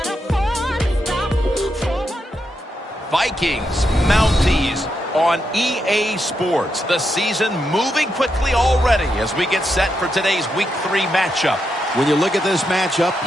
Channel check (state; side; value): normal; both; correlation 0.83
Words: afford to stop for one. Vikings, Mounties on EA Sports. The season moving quickly already as we get set for today's Week 3 matchup. When you look at this matchup,